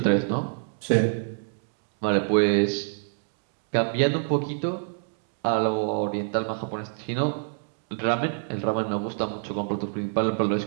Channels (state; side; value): silent; left; digital silence